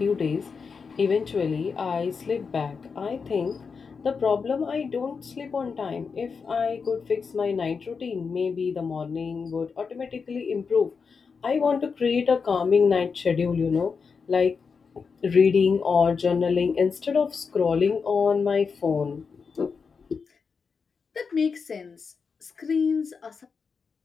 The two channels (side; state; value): right; quieter; 5.4 dB